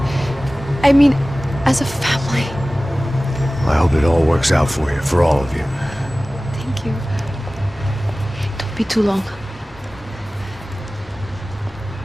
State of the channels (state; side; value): normal; both; correlation 0.97